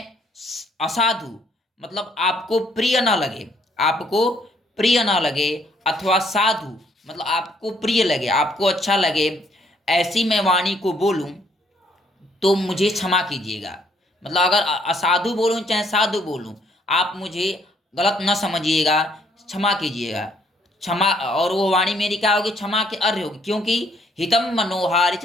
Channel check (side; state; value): both; normal; correlation 0.67